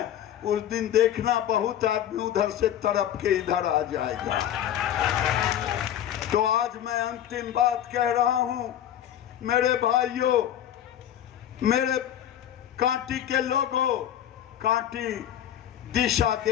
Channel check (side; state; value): right; quieter; 10.8 dB